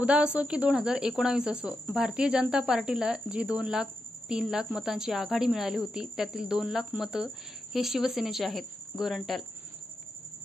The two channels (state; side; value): normal; both; correlation 0.87